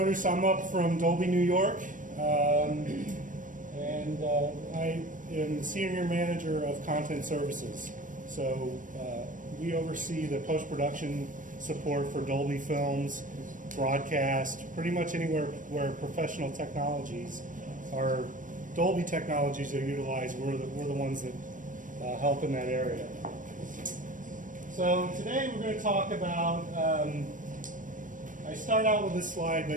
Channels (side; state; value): left; late; 0.38 ms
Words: I'm up from Dolby, New York, and I am the senior manager of content services. So we oversee the post-production support for Dolby films, broadcast, pretty much anywhere where professional technologies or Dolby technologies are utilized. We're the ones that help in that area. So today we're going to talk about, I start out with this slide